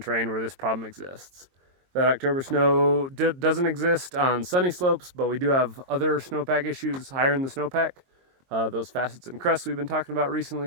where this problem exists. That October snow doesn't exist on sunny slopes, but we do have other snowpack issues higher in the snowpack. Those facets and crests we've been talking about recently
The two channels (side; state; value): left; late; 22 ms